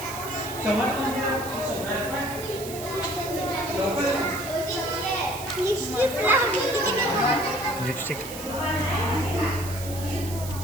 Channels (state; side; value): noise; right; hiss, 12 dB below the sound